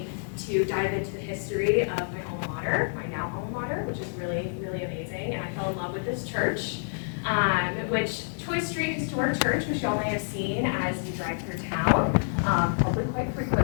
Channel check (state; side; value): silent; right; 59 dB below the other